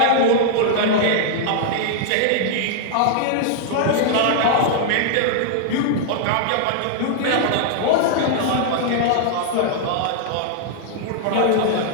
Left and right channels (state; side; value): different; both; correlation -0.01